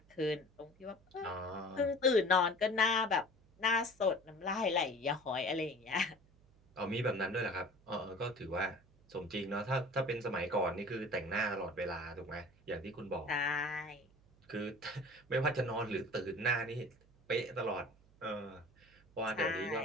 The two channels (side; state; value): right; noise; hum, 29 dB below the sound